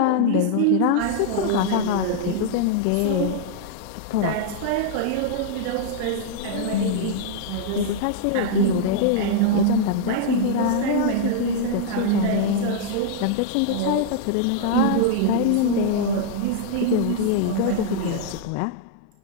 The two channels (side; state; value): both; different; correlation -0.01